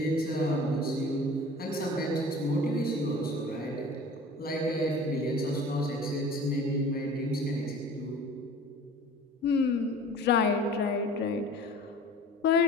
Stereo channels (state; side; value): normal; both; correlation 0.43